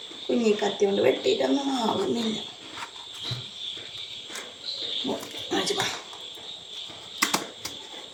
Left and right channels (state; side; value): identical; both; correlation 1.00